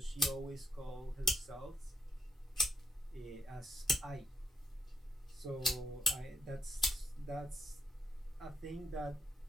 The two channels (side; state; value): both; normal; correlation 0.80